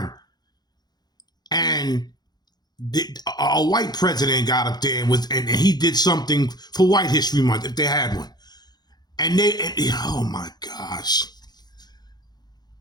and a white president got up there and he did something for White History Month, if they had one. And oh my gosh.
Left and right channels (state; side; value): late; right; 0.20 ms